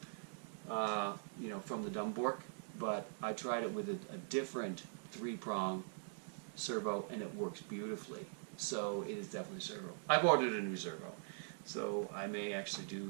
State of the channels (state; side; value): silent; left; digital silence